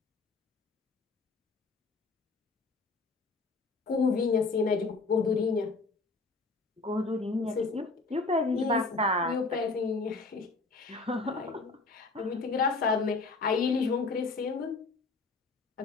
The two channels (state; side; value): quieter; right; 3.8 dB